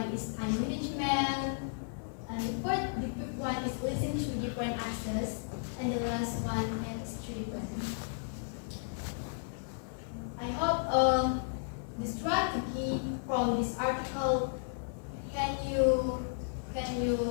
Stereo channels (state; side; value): silent; right; digital silence